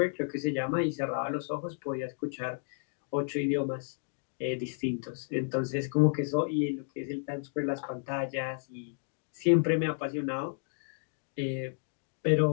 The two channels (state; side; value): silent; right; digital silence